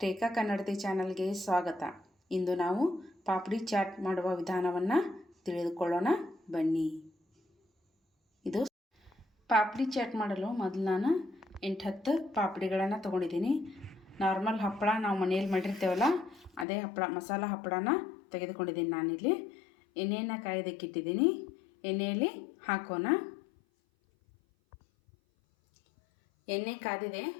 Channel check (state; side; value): drops out; right; at 16.7 s